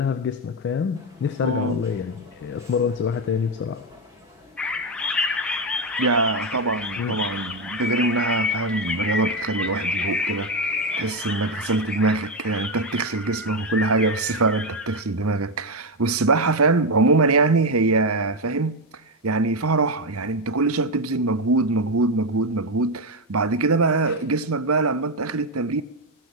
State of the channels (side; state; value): both; normal; correlation 0.08